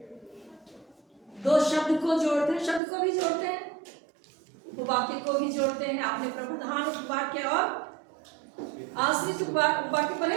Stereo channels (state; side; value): drops out; left; at 2.8 s